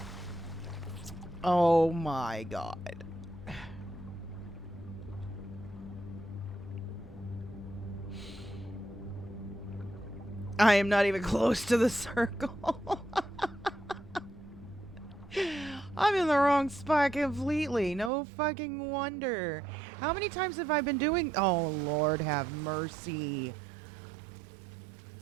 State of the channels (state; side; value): drops out; left; at 18.1 s